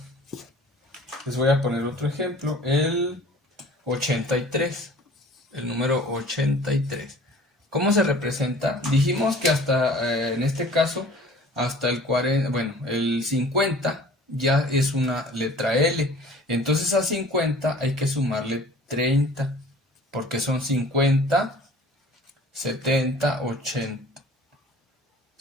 Les voy a poner otro ejemplo, el 83, el número 83. ¿Cómo se representa? Dijimos que hasta, en este caso, hasta el 40, bueno, el 50 ya es una letra L. Entonces a 50 hay que sumarle 30, porque son 50, 70, 80.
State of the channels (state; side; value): normal; both; correlation 0.47